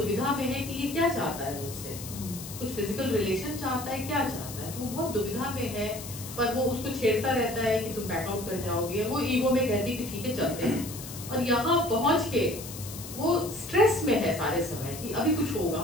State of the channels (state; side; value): noise; left; hiss, 11 dB below the sound